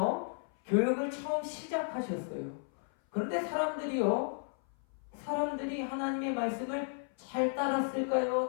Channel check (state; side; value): silent; right; 55 dB below the other